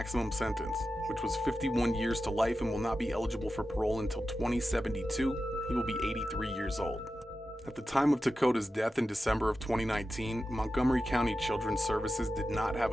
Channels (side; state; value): both; normal; correlation 0.92